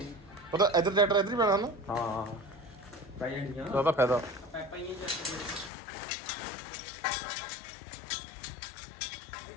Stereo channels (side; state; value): right; drops out; at 5.7 s